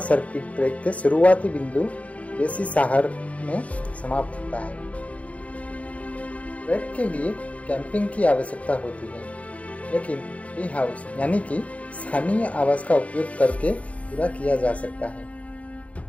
सर्किट ट्रैक के शुरुआती बिंदु बेसी साहर में समाप्त होता है। ट्रैक के लिए कैंपिंग की आवश्यकता होती है, लेकिन टी हाउस यानी कि स्थानीय आवास का उपयोग करके पूरा किया जा सकता है।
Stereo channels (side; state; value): right; late; 0.066 ms